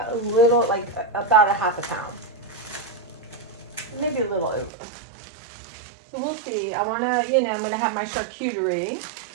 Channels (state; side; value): drops out; left; at 4.7 s